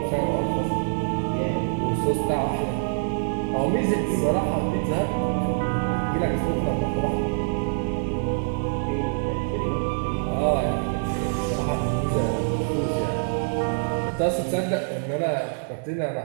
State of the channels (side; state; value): left; silent; digital silence